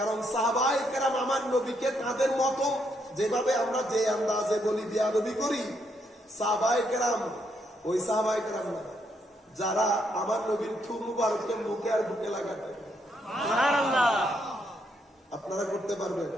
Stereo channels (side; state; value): both; normal; correlation 0.75